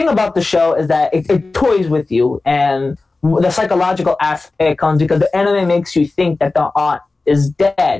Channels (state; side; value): quieter; right; 3.5 dB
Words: about the show is that it toys with you, and the psychological aspect comes because the anime makes you think that the aunt is